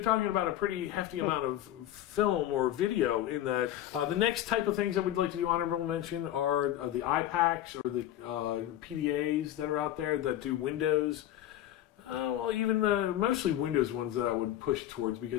talking about a pretty hefty amount of film or video in that. The next type of things that we'd like to do honorable mention are the iPACs or the PDAs that are out there that do Windows. Well, even mostly Windows ones that I would push towards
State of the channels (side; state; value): right; quieter; 12.7 dB